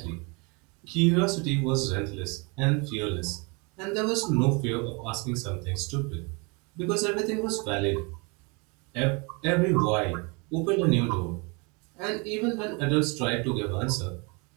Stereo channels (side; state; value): left; quieter; 30.7 dB